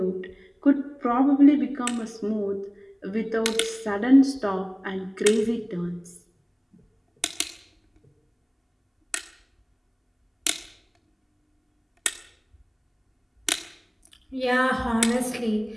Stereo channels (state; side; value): identical; both; correlation 1.00